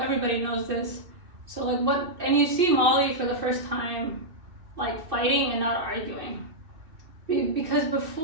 knows this. So like and you see Molly for the first time like fighting and not arguing. Because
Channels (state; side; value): late; left; 2.6 ms